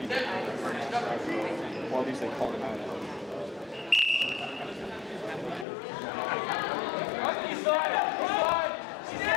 he did. Or at least they call it out.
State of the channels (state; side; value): drops out; right; at 5.7 s